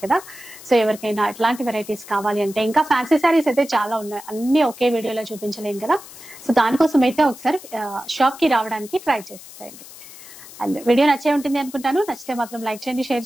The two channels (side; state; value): left; noise; hiss, 17 dB below the sound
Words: కదా. సో ఎవరికైనా ఇట్లాంటి వెరైటీస్ కావాలి అంటే, ఇంకా ఫ్యాన్సీ శారీస్ అయితే చాలా ఉన్నాయి, అన్ని ఒకే వీడియోలో చూపించలేం కదా. సో దానికోసం అయితే ఒకసారి షాప్ కి రావడానికి ట్రై చేసేయండి. అండ్ వీడియో నచ్చే ఉంటుంది అనుకుంటాను. నచ్చితే మాత్రం లైక్ చేయండి, షేర్